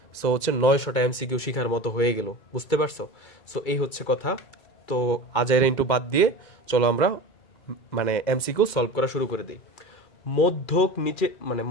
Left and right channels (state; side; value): late; right; 2.0 ms